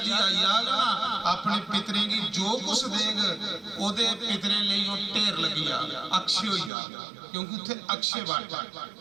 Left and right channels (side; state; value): left; drops out; at 6.7 s